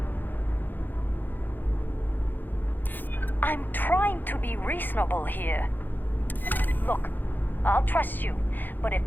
I'm trying to be reasonable here. Look, I'll trust you, but if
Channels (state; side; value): late; right; 0.089 ms